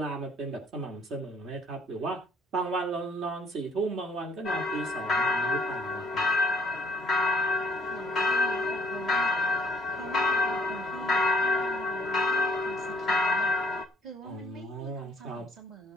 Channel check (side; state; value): both; normal; correlation 0.63